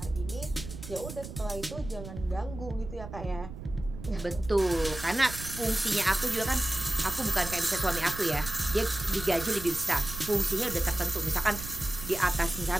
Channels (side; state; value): right; noise; rumble, 11 dB below the sound